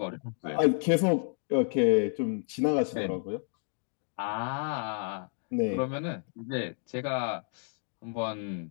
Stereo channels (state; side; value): silent; right; 57 dB below the other